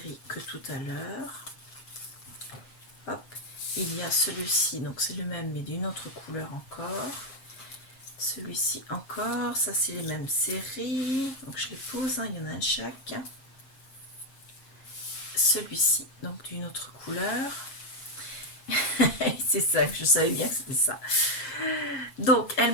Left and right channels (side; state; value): right; late; 7.6 ms